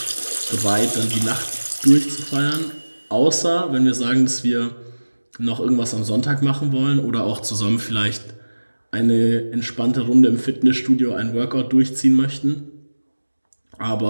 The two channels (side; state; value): both; inverted; correlation -1.00